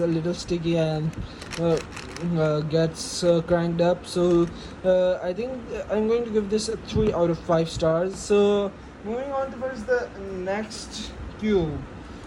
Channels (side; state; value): both; identical; correlation 1.00